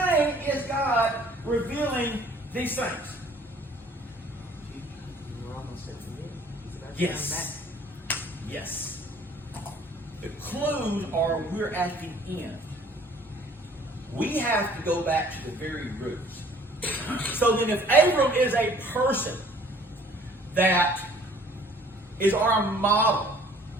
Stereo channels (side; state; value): both; normal; correlation 0.55